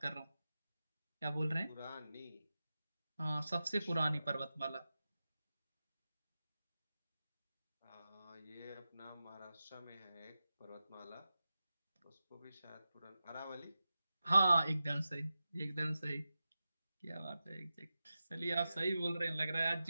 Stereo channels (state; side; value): inverted; both; correlation -0.92